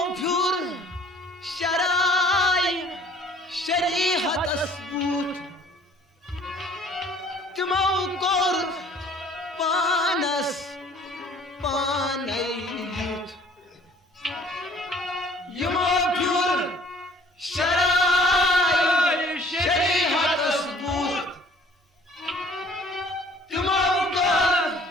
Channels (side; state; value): both; normal; correlation 0.55